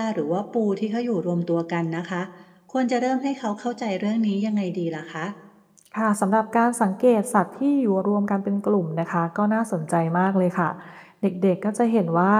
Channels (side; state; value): both; identical; correlation 1.00